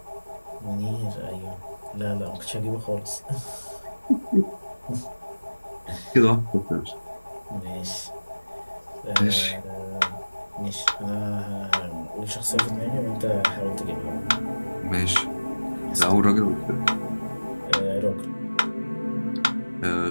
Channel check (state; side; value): inverted; both; correlation -1.00